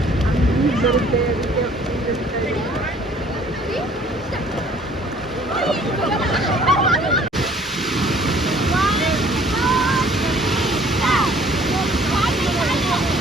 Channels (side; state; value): both; normal; correlation 0.56